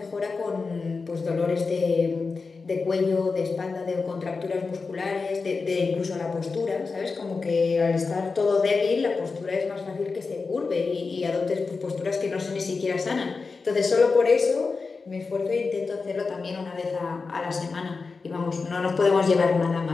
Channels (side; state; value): right; quieter; 4.4 dB